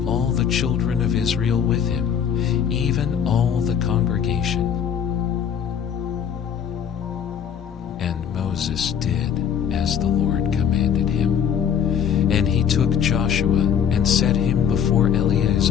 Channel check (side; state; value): right; quieter; 8.1 dB